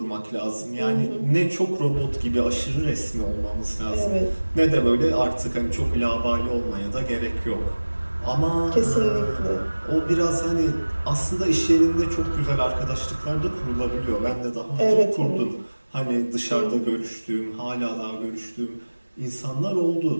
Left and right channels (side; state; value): both; inverted; correlation -1.00